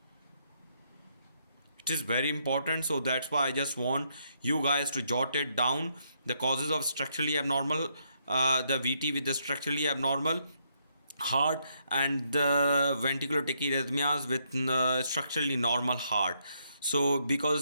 It is very important, so that's why I just want you guys to jot it down. The causes of structurally abnormal, the VT with the structurally abnormal heart, and the ventricular tachyarrhythmias with structurally normal heart. So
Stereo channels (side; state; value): both; inverted; correlation -0.74